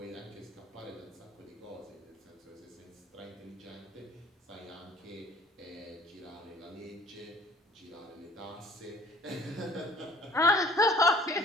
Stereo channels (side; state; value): both; normal; correlation 0.52